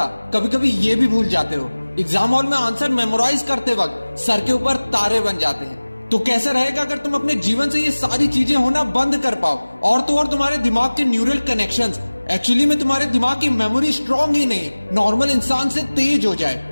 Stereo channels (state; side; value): inverted; both; correlation -1.00